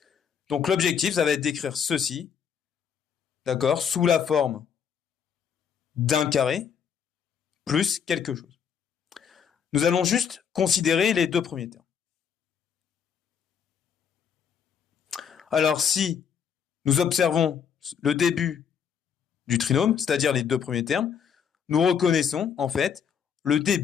Donc, l'objectif, ça va être d'écrire ceci, d'accord, sous la forme d'un carré plus quelque chose. Nous allons juste considérer les deux premiers termes. Alors, si nous observons le début du trinôme, c'est-à-dire les deux premiers termes, nous reconnaissons en fait le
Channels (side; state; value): right; quieter; 7.5 dB